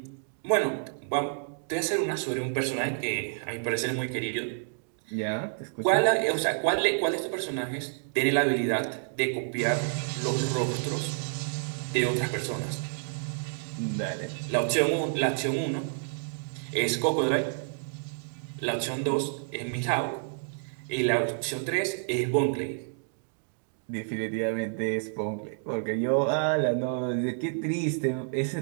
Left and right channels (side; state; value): left; silent; digital silence